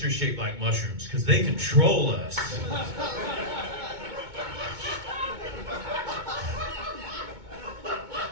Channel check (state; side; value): late; left; 2.2 ms